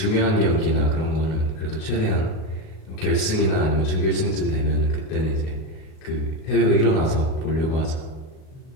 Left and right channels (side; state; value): right; late; 38 ms